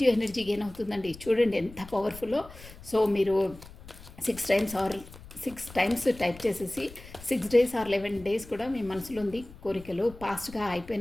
ఎనర్జీ గెయిన్ అవుతుందండి. చూడండి ఎంత పవర్ఫుల్లో. సో మీరు 6 times టైప్ చేసేసి 6 days or 11 days కూడా మీ మనసులో ఉంది కోరికలు ఫాస్ట్గా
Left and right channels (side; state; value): left; noise; rumble, 18 dB below the sound